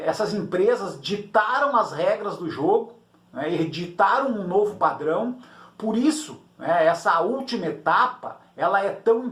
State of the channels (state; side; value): identical; both; correlation 1.00